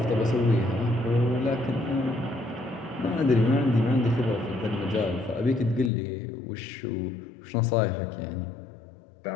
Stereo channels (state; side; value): drops out; right; at 5.9 s